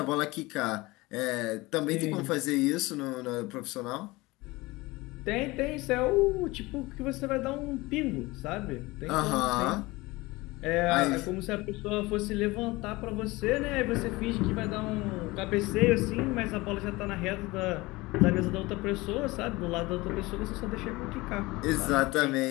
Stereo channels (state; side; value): quieter; right; 21.6 dB